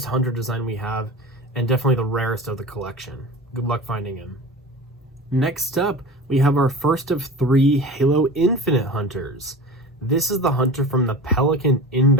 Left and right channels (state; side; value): normal; both; correlation 0.33